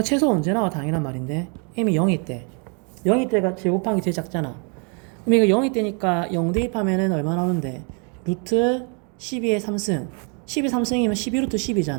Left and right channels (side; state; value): left; quieter; 37.6 dB